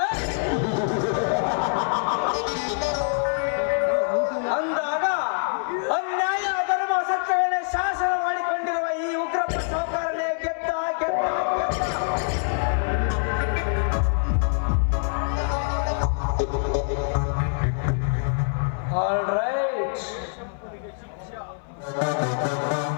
ಅಂದಾಗ ಅನ್ಯಾಯ ಅಧರ್ಮ ಸತ್ಯವನ್ನೇ ಶಾಸನ ಮಾಡಿಕೊಂಡಿರುವ ಈ ಉಗ್ರಪ್ಪ ಸಾಹುಕಾರನೇ ಗೆದ್ದ ಗೆದ್ದ ಗೆದ್ದ. ಆಲ್ ರೈಟ್,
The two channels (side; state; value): right; silent; 62 dB below the other